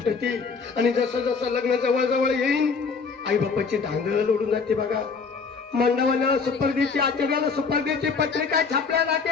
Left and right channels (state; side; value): quieter; right; 5.1 dB